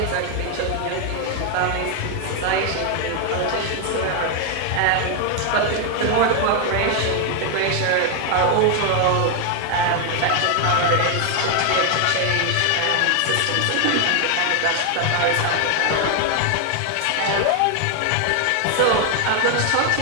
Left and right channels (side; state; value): both; different; correlation 0.01